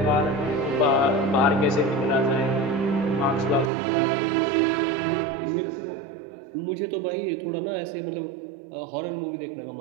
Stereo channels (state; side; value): drops out; left; at 3.7 s